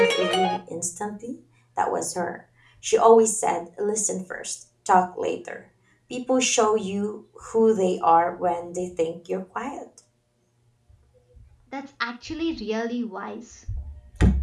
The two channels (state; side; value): identical; both; correlation 1.00